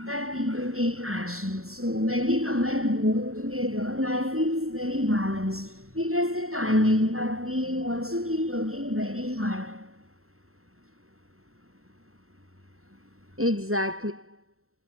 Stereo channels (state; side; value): late; left; 0.63 ms